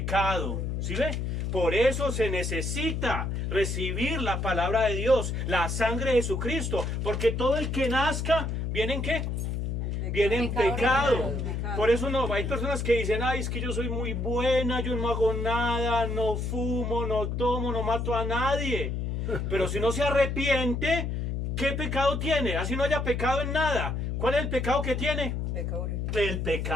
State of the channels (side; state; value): left; noise; hum, 2 dB below the sound